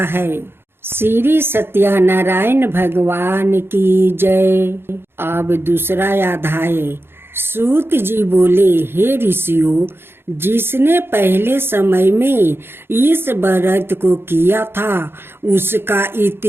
है। श्री सत्यनारायण भगवान की जय। अब दूसरा अध्याय। सूत जी बोले, हे ऋषियों, जिसने पहले समय में इस व्रत को किया था उसका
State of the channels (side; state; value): left; late; 0.11 ms